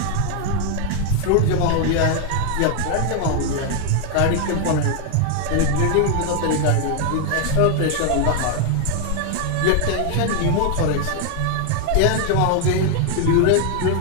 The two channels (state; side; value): different; both; correlation 0.00